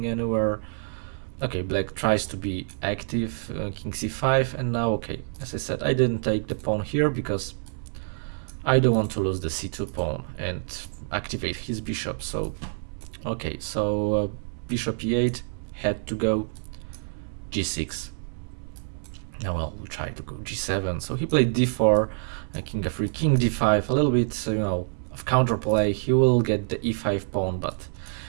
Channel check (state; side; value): silent; left; 60 dB below the other